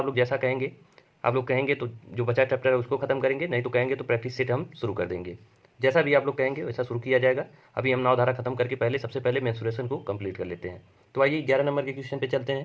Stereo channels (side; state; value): both; identical; correlation 1.00